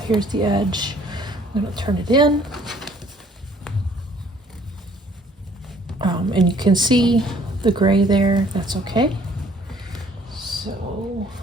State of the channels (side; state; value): both; normal; correlation 0.58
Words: here's the edge. I'm going to turn it in. And you can see the gray there. That's okay. So